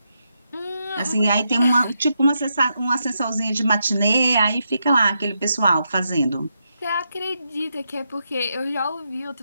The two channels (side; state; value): both; inverted; correlation -0.83